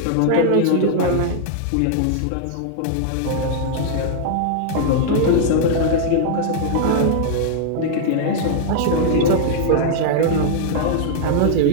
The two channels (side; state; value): both; different; correlation -0.01